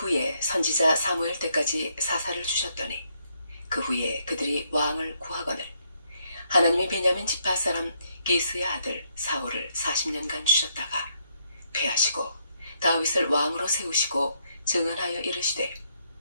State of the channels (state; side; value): inverted; both; correlation -0.74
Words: 선지자 사무엘 때까지 사사를 주셨더니 그 후에 그들이 왕을 구하거늘 하나님이 베냐민 지파 사람 기스의 아들 사울을 40년간 주셨다가 패하시고 다윗을 왕으로 세우시고 증언하여 이르시되